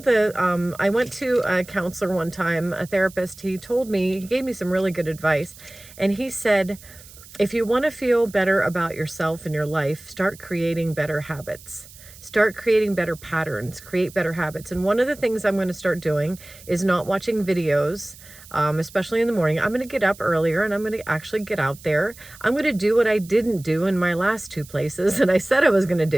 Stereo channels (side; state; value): right; noise; hiss, 20 dB below the sound